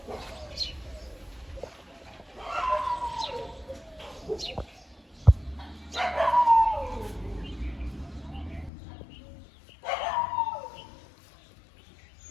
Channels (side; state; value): right; drops out; at 8.7 s